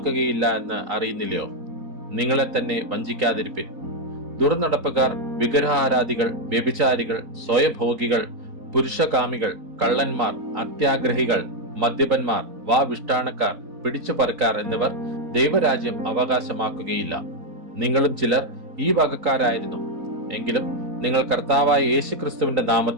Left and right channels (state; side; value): late; left; 3.9 ms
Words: എന്ന് അറിയുന്നില്ലയോ? നിങ്ങളെ തന്നെ വഞ്ചിക്കാതിരിപ്പിൻ. ദുർനടപ്പുകാർ, വിഗ്രഹാരാധികൾ, വ്യഭിചാരികൾ, സ്വയഭോഗികൾ, പുരുഷകാമികൾ, കള്ളന്മാർ, അത്യാഗ്രഹികൾ, മദ്യപന്മാർ, വാവിഷ്ടാണക്കാർ, പിടിച്ചുപറിക്കാർ എന്നിവർ ദൈവരാജ്യം അവകാശമാക്കുകയില്ല. നിങ്ങളും ചിലർ ഈ വകക്കാരായിരുന്നു. എങ്കിലും നിങ്ങൾ കർത്താവായ യേശുക്രിസ്തുവിന്റെ